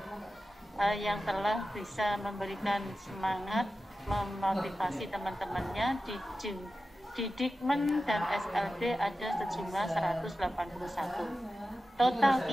yang telah bisa memberikan semangat, memotivasi teman-temannya di Dikmen dan SLB ada sejumlah 181. Total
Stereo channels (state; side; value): normal; both; correlation 0.93